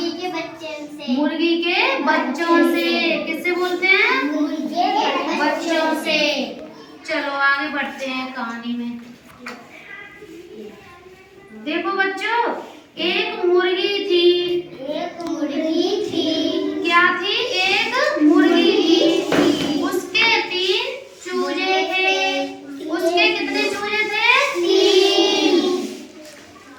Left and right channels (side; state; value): both; identical; correlation 1.00